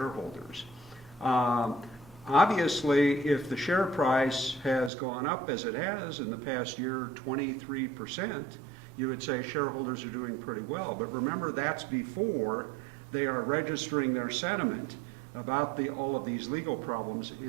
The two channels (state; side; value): drops out; left; at 4.9 s